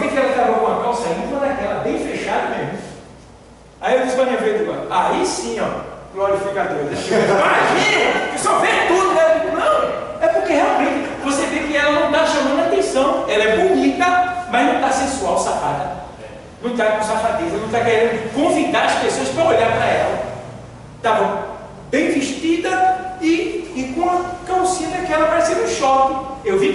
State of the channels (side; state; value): both; identical; correlation 1.00